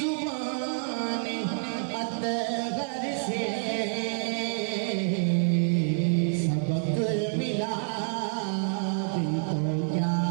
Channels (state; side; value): silent; left; 59 dB below the other